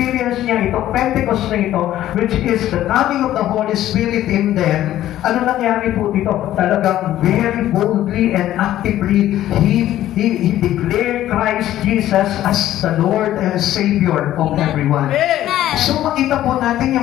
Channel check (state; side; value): quieter; right; 13.1 dB